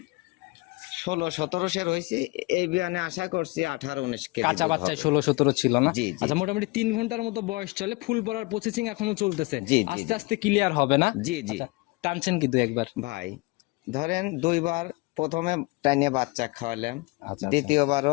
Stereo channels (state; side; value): quieter; right; 24.8 dB